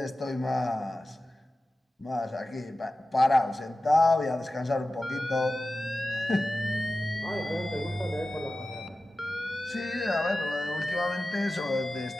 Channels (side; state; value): both; normal; correlation 0.95